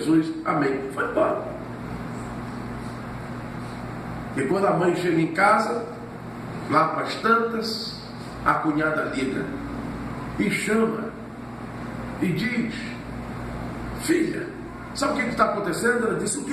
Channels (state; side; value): identical; both; correlation 1.00